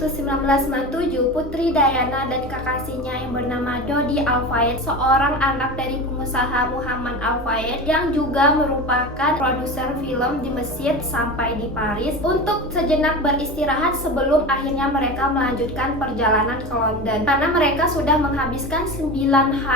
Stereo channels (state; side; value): normal; both; correlation 0.28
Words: 1997, Putri Diana dan kekasihnya yang bernama Dodi Al-Fayed, seorang anak dari pengusaha Muhammad Al-Fayed yang juga merupakan produser film di Mesir, sampai di Paris untuk sejenak beristirahat sebelum akhirnya mereka melanjutkan perjalanan ke London. Karena mereka sudah menghabiskan 9